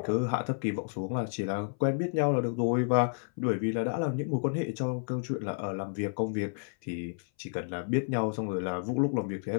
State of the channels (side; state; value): right; silent; 57 dB below the other